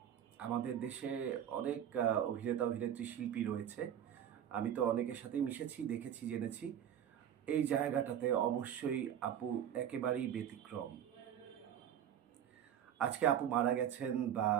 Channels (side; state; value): left; quieter; 9.8 dB